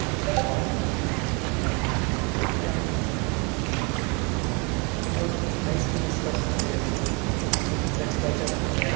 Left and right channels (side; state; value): left; quieter; 31.0 dB